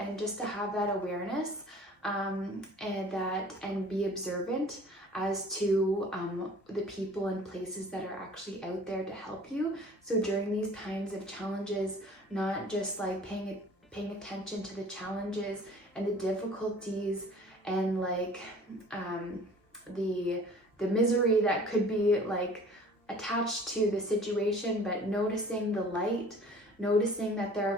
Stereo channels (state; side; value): normal; both; correlation 0.48